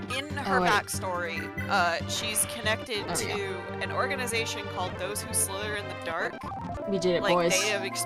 in her backstory, she's connected to an organization called Those Who Slither in the Dark. We did it, like, boys. They have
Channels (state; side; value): identical; both; correlation 1.00